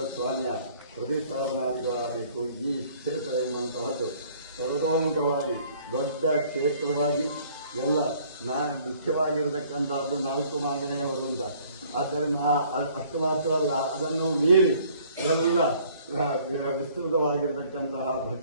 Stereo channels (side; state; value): both; inverted; correlation -0.58